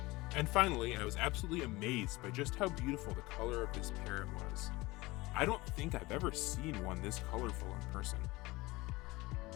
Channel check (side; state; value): right; quieter; 21.3 dB